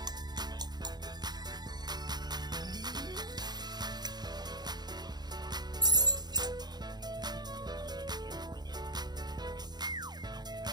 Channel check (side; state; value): left; late; 0.20 ms